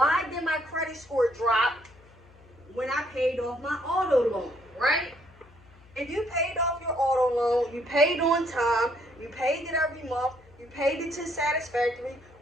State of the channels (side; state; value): left; noise; hum, 26 dB below the sound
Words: did my credit score drop when I paid off my auto loan, right? If you paid off your auto loan, you paid on time, you paid it every month, you paid it to satisfactory,